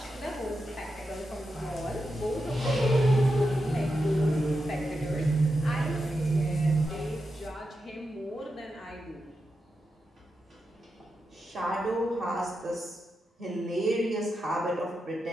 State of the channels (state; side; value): normal; both; correlation 0.88